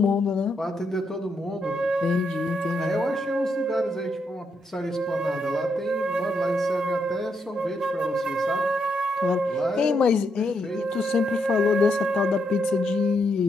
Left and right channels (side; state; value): both; normal; correlation 0.79